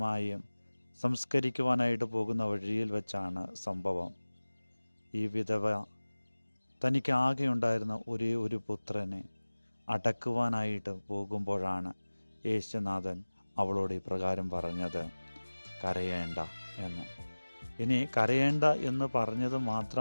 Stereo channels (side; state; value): both; inverted; correlation -1.00